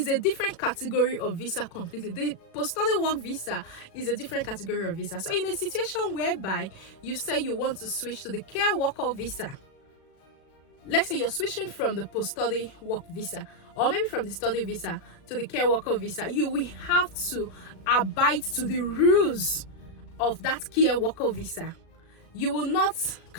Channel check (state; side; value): late; right; 36 ms